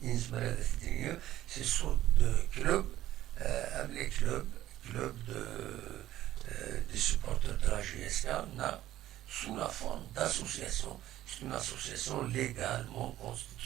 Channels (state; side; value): quieter; left; 13.9 dB